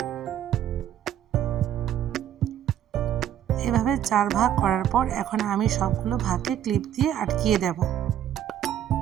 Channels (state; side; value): quieter; left; 10.6 dB